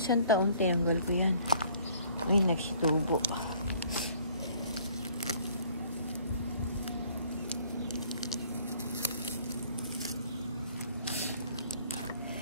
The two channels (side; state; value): both; inverted; correlation -0.58